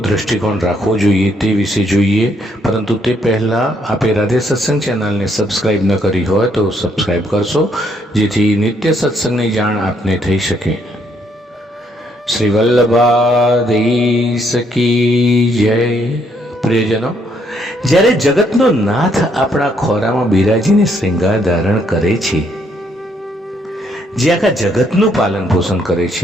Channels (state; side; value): normal; both; correlation 0.71